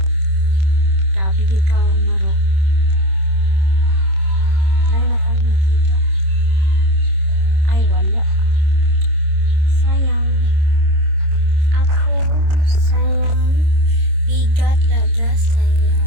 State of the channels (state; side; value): late; left; 26 ms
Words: Grabe ka maro. Wala na pang makita. Ay wala. Sayang. Ako sayang. Bigat laga